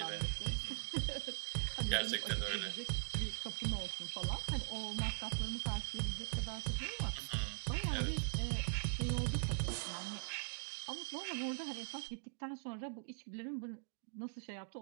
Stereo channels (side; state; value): left; silent; digital silence